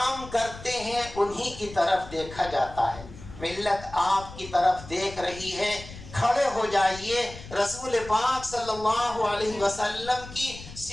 کرتے ہیں انہی کی طرف دیکھا جاتا ہے. ملت آپ کی طرف دیکھ رہی ہے. کھڑے ہو جائیے، رسول پاک صلی اللہ علیہ وسلم کی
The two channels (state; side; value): noise; left; rumble, 15 dB below the sound